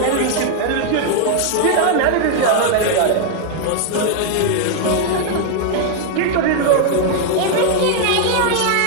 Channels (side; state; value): both; different; correlation 0.00